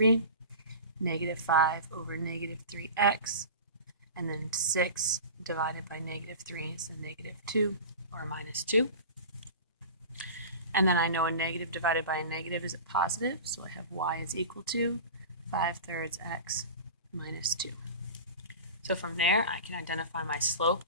Negative 5 over negative 3x, and then 6 divided by negative 3 is a negative 2, or minus 2. And then I know a negative divided by a negative is a positive, so I have y is equal to 5/3 x minus 2. So from there, I can identify my slope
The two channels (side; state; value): both; inverted; correlation -0.33